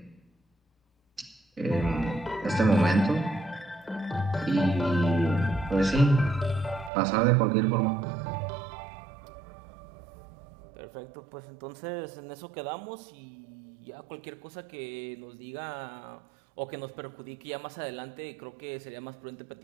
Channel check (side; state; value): left; drops out; at 6.9 s